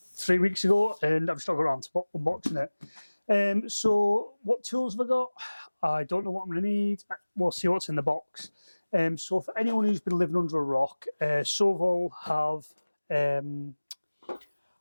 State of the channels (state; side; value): inverted; both; correlation -1.00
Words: 3 weeks ago, and I've still got around to unboxing it. So what tools have I got? I don't know what I'm going to need. We'll see what's in the box. So for anyone who's been living under a rock, Sovol have,